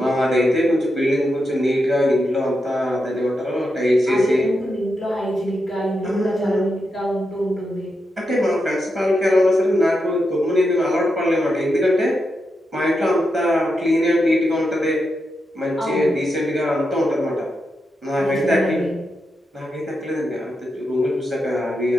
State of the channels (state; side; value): normal; both; correlation 0.86